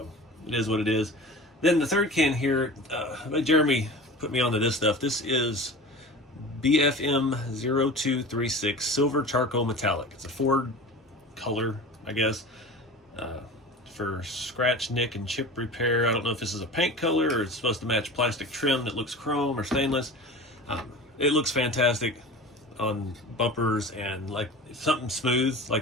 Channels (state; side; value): normal; both; correlation 0.35